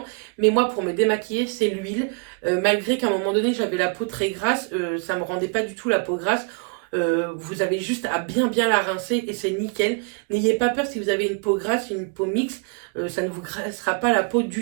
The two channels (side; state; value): left; quieter; 36.2 dB